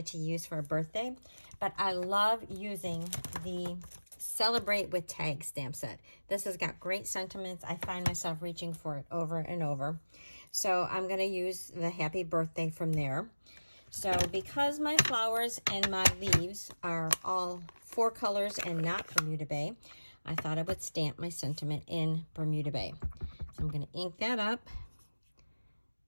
to use for a birthday, but I love using the Celebrate with Tag stamp set. This has got great sentiments. I find myself reaching for it over and over. So I'm going to use the happy birthday from there. So because my flowers and my leaves are all 4 colors and not Bermuda Bay, I thought I would stamp my sentiment in Bermuda Bay. So I'm going to ink that up.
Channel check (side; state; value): both; inverted; correlation -1.00